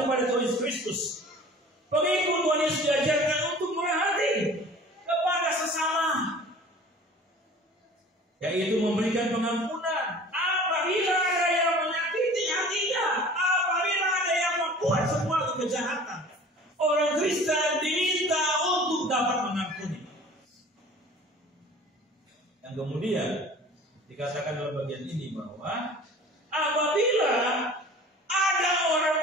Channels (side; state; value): both; normal; correlation 0.45